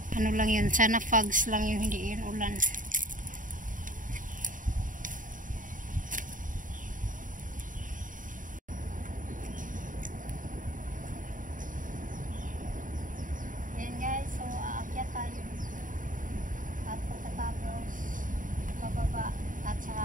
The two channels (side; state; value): left; late; 0.38 ms